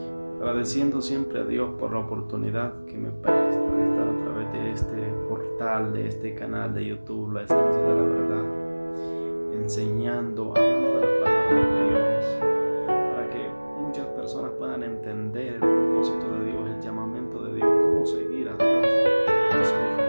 Agradeciendo siempre a Dios por la oportunidad que me presta de estar a través de este portal, de este canal de YouTube, La Esencia de la Verdad, enseñando, hablando de la palabra de Dios, para que muchas personas puedan entender el propósito de Dios, el llamamiento de Dios, cómo seguir a Dios y a su Hijo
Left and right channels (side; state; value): both; inverted; correlation -1.00